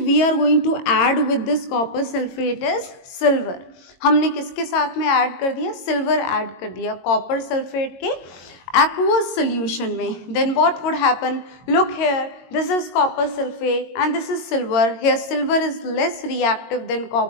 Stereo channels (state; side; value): late; right; 22 ms